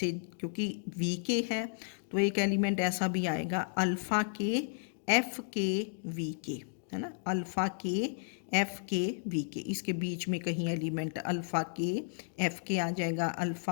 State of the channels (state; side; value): silent; right; digital silence